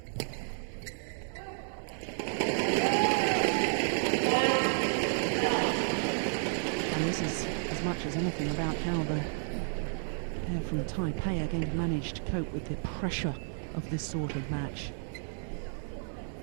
And this is as much as anything about how the pair from Taipei are going to manage to cope with the pressure of this sort of match.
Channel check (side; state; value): left; silent; 57 dB below the other